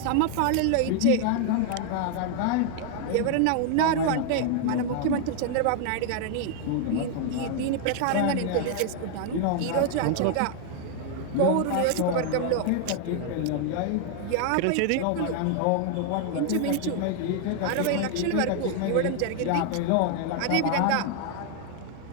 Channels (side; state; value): both; different; correlation 0.00